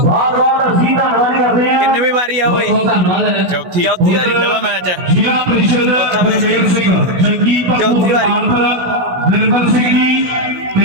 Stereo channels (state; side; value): late; left; 16 ms